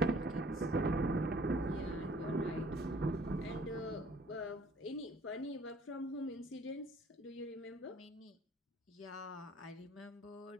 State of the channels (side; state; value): both; normal; correlation 0.55